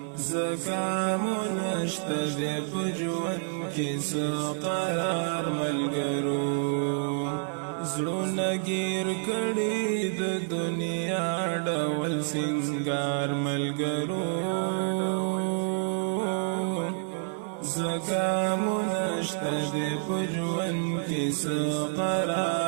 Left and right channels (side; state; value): left; silent; 59 dB below the other